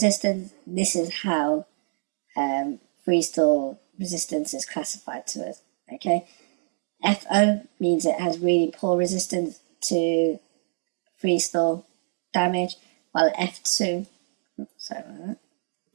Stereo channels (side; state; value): left; silent; 61 dB below the other